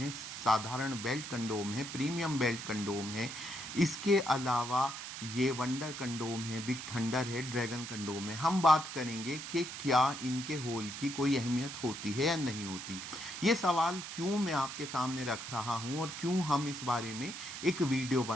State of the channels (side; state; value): right; noise; hiss, 8 dB below the sound